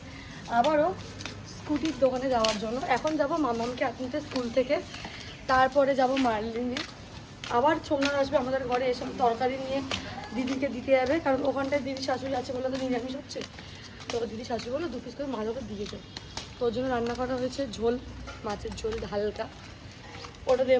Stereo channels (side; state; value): both; identical; correlation 1.00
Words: আবারও স্কুটির দোকানে যাওয়ার জন্য। এখন যাব মামামকে আনতে স্কুল থেকে, তারপরে যাব মার্লিনে। আবার সোমনাথ আসবে আমাদের ঘরে, এসব তরকারি নিয়ে দিদিকে দিতে যাবে, কারণ ওখানটায় দিদি শাশুড়ি আছে বলে তো নিরামিষ হচ্ছে। তো দিদি শাশুড়ি বলে 2 পিস করে মাছ ওকে দিয়ে যাবে। তো ওর জন্য রান্না করা হয়েছে ঝোল, মাছের ঝোল হালকা, ওটা